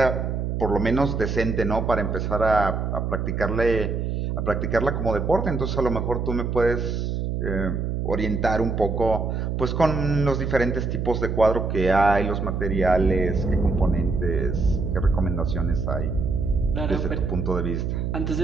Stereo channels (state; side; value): noise; right; hum, 1 dB below the sound